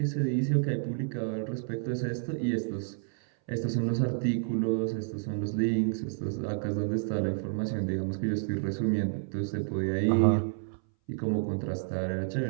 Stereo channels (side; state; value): left; silent; 58 dB below the other